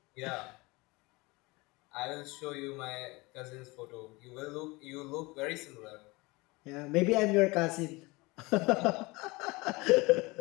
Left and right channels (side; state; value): right; quieter; 23.8 dB